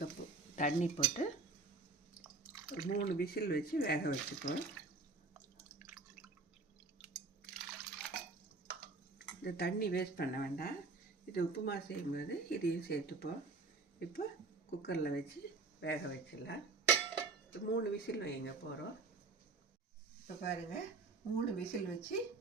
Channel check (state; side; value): quieter; left; 3.9 dB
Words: தண்ணி போட்டு 3 விசில் வச்சு வேக வச்சுப்போம். இந்த தண்ணி வேஸ்ட் பண்ண வேண்டாம். இது உப்புமா செய்யும்போது இதையும் சேர்த்துப்போம். இப்போ குக்கரில் வச்சு வேக வச்சிடலாம். 3 விசில் வைங்க போகிறோம். இப்போ பாருங்கள், 3 விசில் வச்சு